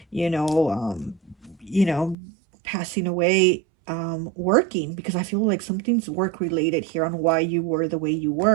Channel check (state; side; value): drops out; left; at 2.1 s